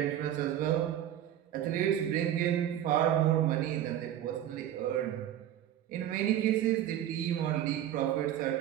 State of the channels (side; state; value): left; quieter; 11.5 dB